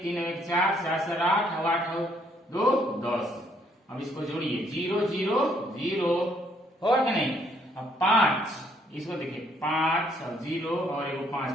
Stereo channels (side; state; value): both; normal; correlation 0.68